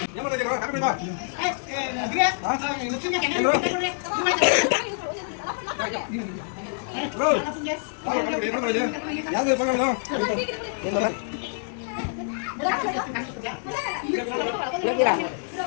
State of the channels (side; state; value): right; silent; digital silence